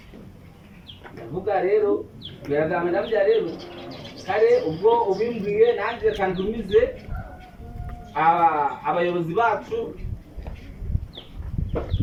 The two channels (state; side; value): identical; both; correlation 1.00